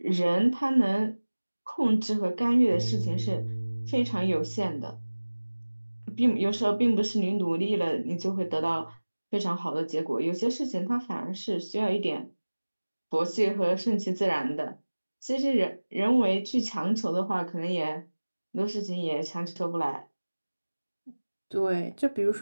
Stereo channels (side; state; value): both; inverted; correlation -1.00